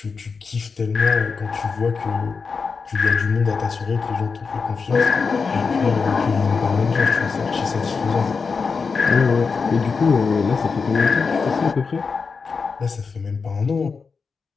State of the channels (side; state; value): right; quieter; 5.0 dB